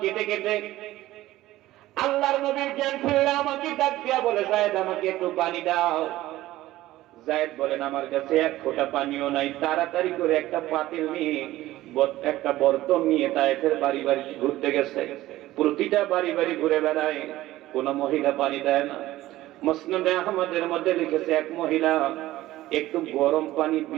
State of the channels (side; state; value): left; quieter; 16.0 dB